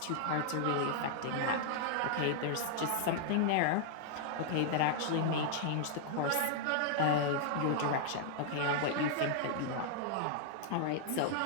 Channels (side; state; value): both; different; correlation -0.01